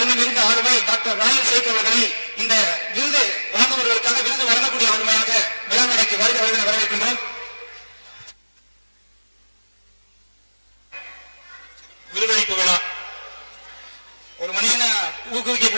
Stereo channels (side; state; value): both; inverted; correlation -1.00